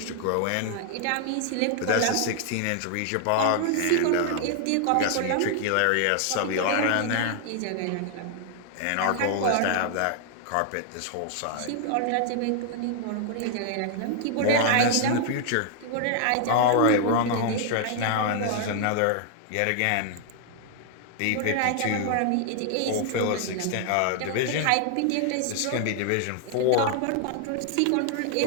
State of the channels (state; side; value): different; both; correlation 0.00